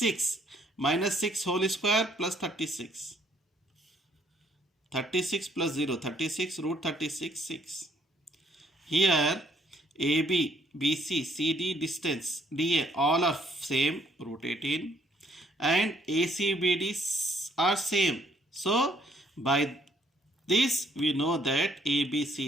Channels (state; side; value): normal; both; correlation 0.66